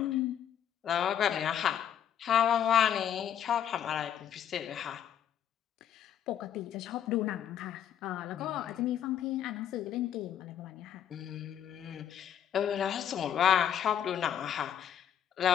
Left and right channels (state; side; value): quieter; right; 9.6 dB